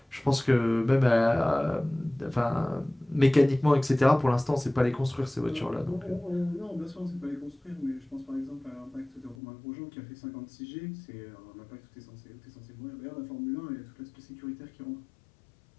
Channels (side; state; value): right; drops out; at 9.3 s